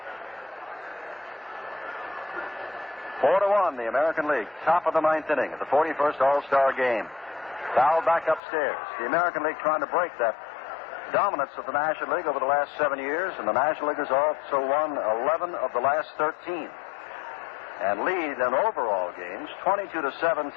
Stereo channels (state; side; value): drops out; right; at 8.4 s